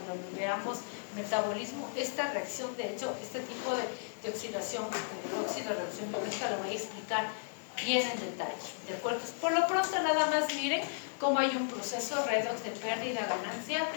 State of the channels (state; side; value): silent; right; digital silence